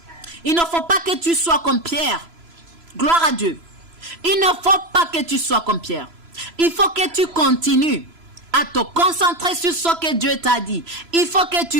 Il ne faut pas que tu sois comme Pierre. Gloire à Dieu. Il ne faut pas que tu sois comme Pierre. Il faut que tu continues à te concentrer sur ce que Dieu t'a dit. Il faut que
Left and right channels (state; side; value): late; left; 3.0 ms